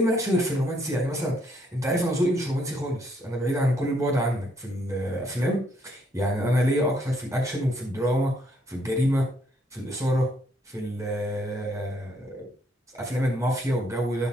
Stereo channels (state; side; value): normal; both; correlation 0.70